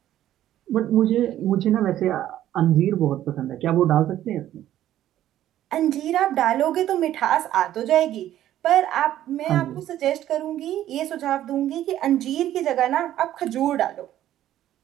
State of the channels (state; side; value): quieter; left; 12.6 dB